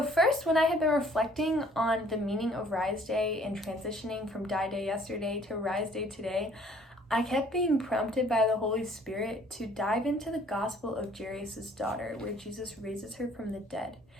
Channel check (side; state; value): both; normal; correlation 0.58